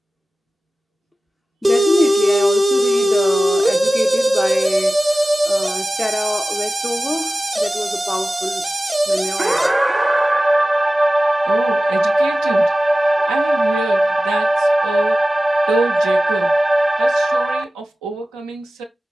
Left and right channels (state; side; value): normal; both; correlation 0.96